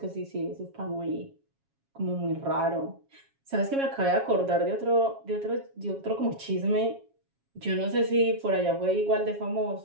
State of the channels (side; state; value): left; late; 7.3 ms